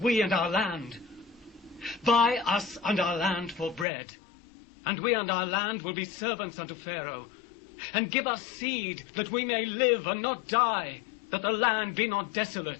and our land? Buy us and our land for bread, and we and our land will be servants unto Pharaoh. And give us seed, that we may live and not die, that the land be not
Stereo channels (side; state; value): right; drops out; at 3.9 s